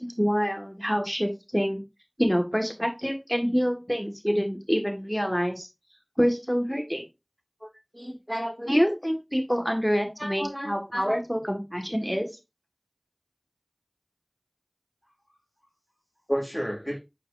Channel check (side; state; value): both; identical; correlation 1.00